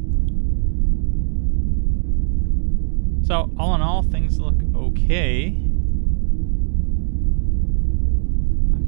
So, all in all, things look okay. I'm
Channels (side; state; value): left; silent; digital silence